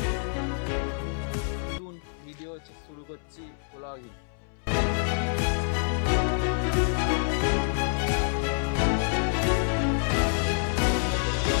নতুন ভিডিও শুরু করছি, blogging.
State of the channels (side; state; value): right; silent; 60 dB below the other